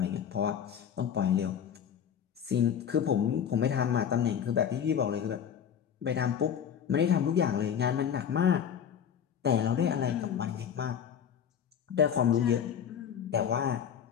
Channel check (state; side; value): quieter; right; 8.4 dB